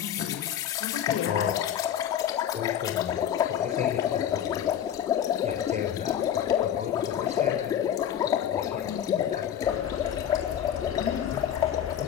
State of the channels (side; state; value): right; quieter; 9.8 dB